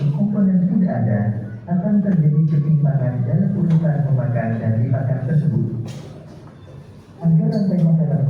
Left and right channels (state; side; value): identical; both; correlation 1.00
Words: komponen tidak ada, akan terjadi ketimpangan dalam urutan memakan dan dimakan tersebut. Agar rantai makanan